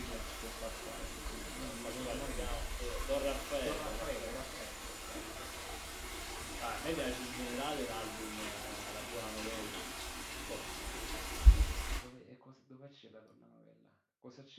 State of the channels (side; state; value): both; identical; correlation 1.00